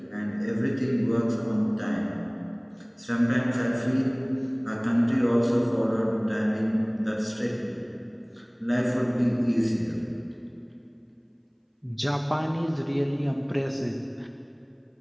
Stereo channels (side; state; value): both; identical; correlation 1.00